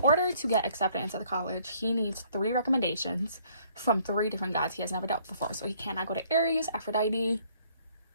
order to get accepted into the college, he needs 3 recommendations from 3 different gods he has never dealt before. So he cannot go to Ares, Aphrodite,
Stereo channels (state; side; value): inverted; both; correlation -0.62